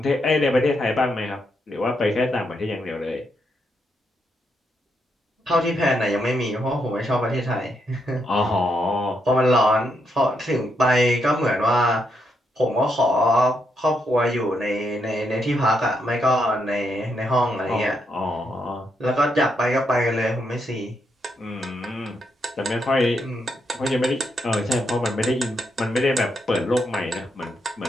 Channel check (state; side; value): normal; both; correlation 0.79